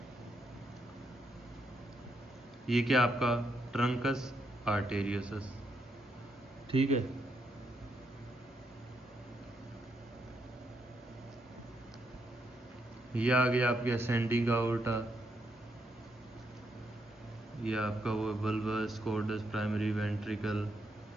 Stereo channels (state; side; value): normal; both; correlation 0.78